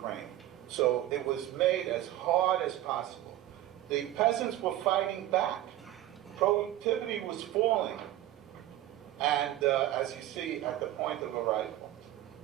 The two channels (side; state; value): left; quieter; 14.0 dB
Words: So it was made as hard as possible. The peasants were fighting back. Productivity was falling. And as you see at the point of a rifle.